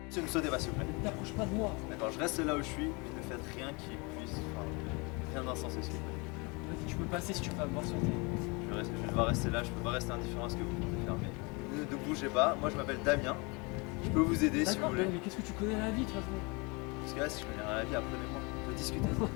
Ne sautez pas, s'il vous plaît. Ne t'approche pas de moi. D'accord, je reste là où je suis, mais ne faites rien qui puisse. Enfin, rien d'insensé, s'il vous plaît. Vas-y, tu peux passer si tu veux pas me voir sauter. Je vais devoir rester là, je peux pas rester indifférent à ce que vous comptez faire, mais ne bougez pas. Moi, je m'appelle Damien. Je peux vous aider si vous D'accord, voulez. mais qu'est-ce que tu connais à la vie de toute façon? Parce que là, si je connais rien à la vie, apprenez-moi. On peut discuter.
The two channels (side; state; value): right; quieter; 28.9 dB